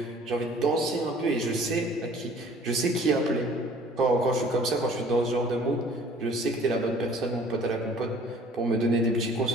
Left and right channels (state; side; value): normal; both; correlation 0.52